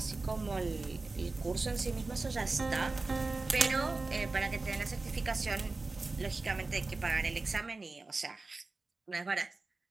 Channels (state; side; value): quieter; left; 3.5 dB